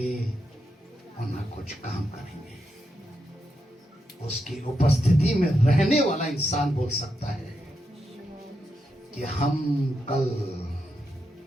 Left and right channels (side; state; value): both; normal; correlation 0.84